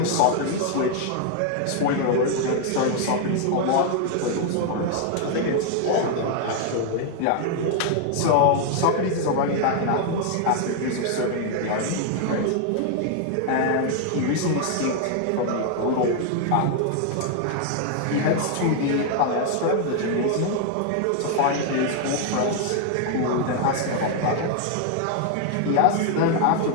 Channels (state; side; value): different; both; correlation 0.00